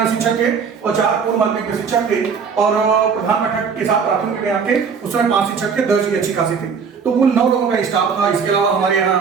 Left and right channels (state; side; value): quieter; left; 6.0 dB